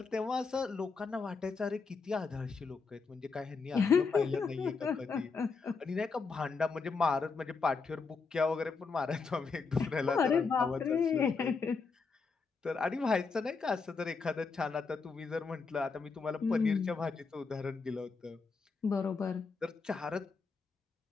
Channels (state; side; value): quieter; right; 4.8 dB